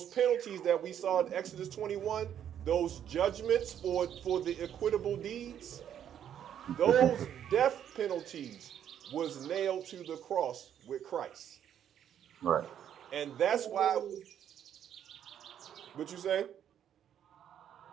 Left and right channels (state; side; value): quieter; left; 9.7 dB